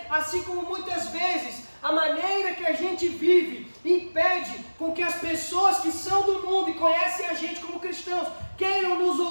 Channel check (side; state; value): both; inverted; correlation -1.00